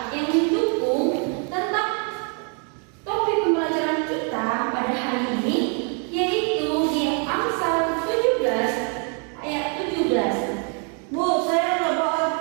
yang mendukung tentang topik pembelajaran kita pada hari ini, yaitu di Amsal 17 ayat 17. Bu, saya nggak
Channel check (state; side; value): quieter; left; 39.7 dB